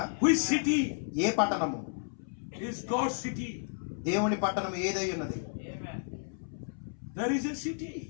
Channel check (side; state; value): right; silent; 56 dB below the other